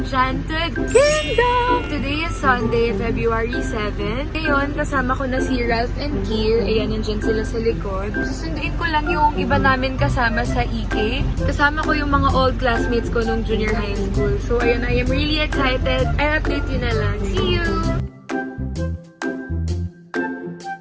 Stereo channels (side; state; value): both; identical; correlation 1.00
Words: Kingdom! Today is Sunday, February 7. Ngayon, kasama ko na si Ralph and Kier. Ayan, nandyan sila sa likod. Susunduin ko lang yung iba namin kasama sa EK. Kasama ko yung mga old classmates ko nung junior high school. So ayun, I am really excited. I'll update you na lang. See you!